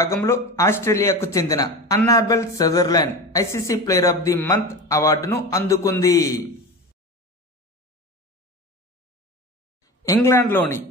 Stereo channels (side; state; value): both; normal; correlation 0.28